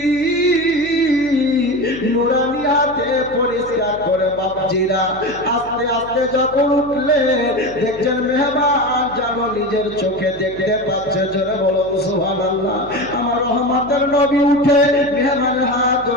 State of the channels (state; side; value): noise; left; hum, 20 dB below the sound